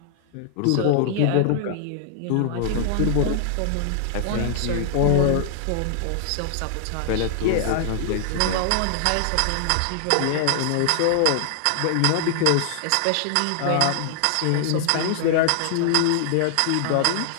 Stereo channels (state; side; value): different; both; correlation 0.00